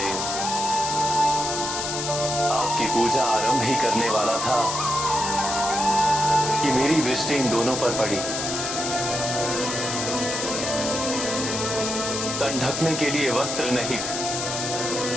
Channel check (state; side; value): noise; left; hiss, 3 dB below the sound